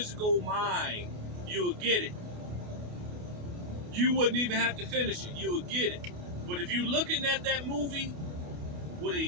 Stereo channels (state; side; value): late; left; 28 ms